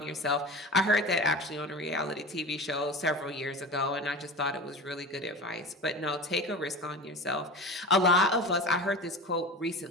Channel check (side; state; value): both; normal; correlation 0.31